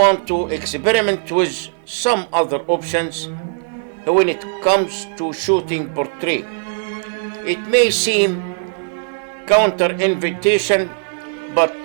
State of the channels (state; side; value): silent; left; 67 dB below the other